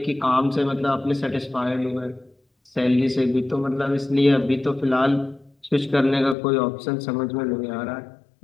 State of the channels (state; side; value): drops out; right; at 6.4 s